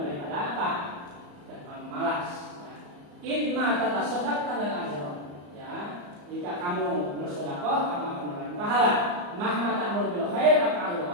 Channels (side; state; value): left; late; 34 ms